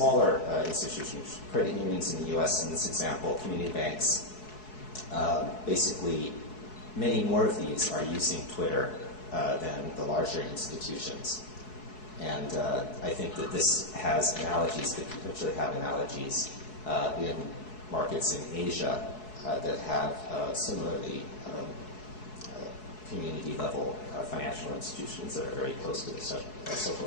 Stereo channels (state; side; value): late; right; 4.7 ms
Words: institutions, credit unions in the U.S. in this example, community banks, basically many more of these are using Twitter than the larger institutions. And I think that this has analogies, could potentially have analogies in markets in Asia that have similarly community-level financial institutions that are very close to the social